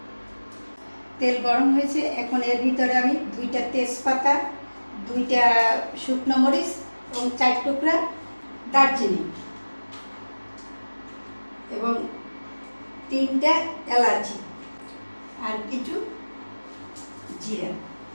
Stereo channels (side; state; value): both; inverted; correlation -1.00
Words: তেল গরম হয়েছে। এখন এর ভিতরে আমি 2টা তেজপাতা, 2টা শুকনো মরিচ এবং 4 টুকরা দারচিনি এবং 3টা এলাচি আর কিছু জিরা